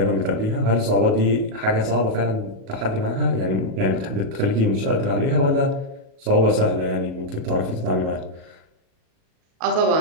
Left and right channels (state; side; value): late; left; 37 ms